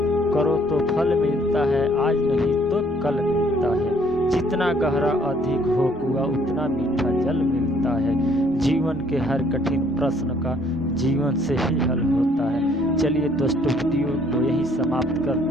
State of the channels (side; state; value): both; normal; correlation 0.63